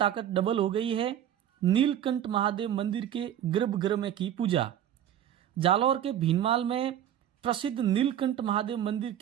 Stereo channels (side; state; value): left; quieter; 10.7 dB